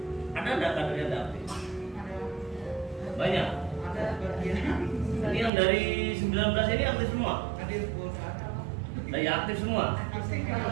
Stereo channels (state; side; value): drops out; left; at 5.5 s